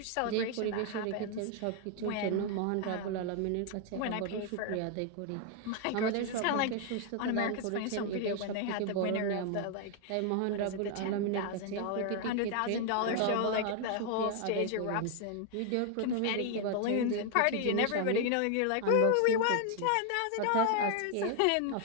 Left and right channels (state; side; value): different; both; correlation 0.00